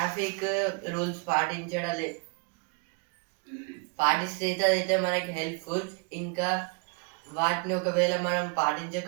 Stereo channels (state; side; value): quieter; left; 33.1 dB